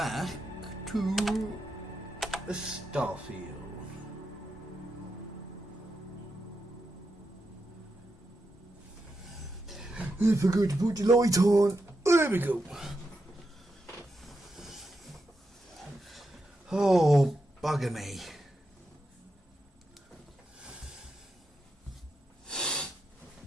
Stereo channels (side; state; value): both; normal; correlation 0.86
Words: to Starfield. I forgot to put the light on. There we go. Oh, bugger me.